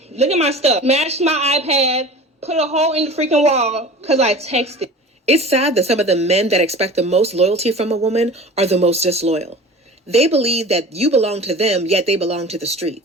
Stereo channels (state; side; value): normal; both; correlation 0.39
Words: Look at my stuff. Smashed my iPad, put a hole in the freaking wall because I texted. It's sad that some of the men that expect the most loyalty from a woman are the most disloyal. They believe that you belong to them, yet they belong to the